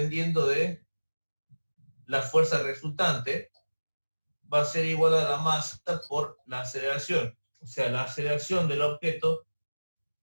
de la fuerza resultante, va a ser igual a la masa por la aceleración. O sea, la aceleración del objeto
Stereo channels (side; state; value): both; inverted; correlation -1.00